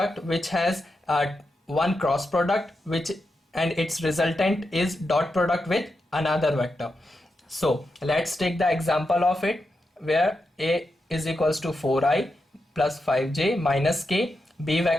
which has one cross product and its resultant is dot product with another vector. So let's take the example of it, where A is equals to 4i plus 5j minus k. B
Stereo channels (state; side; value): normal; both; correlation 0.87